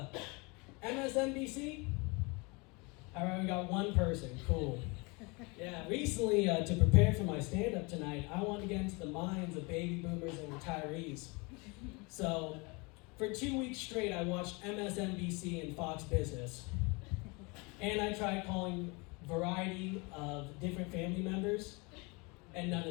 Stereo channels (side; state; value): right; quieter; 28.3 dB